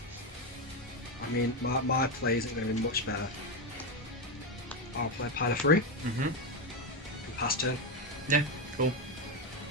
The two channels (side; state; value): both; normal; correlation 0.09